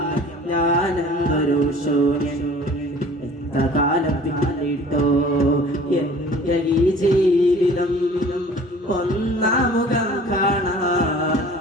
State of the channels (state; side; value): normal; both; correlation 0.48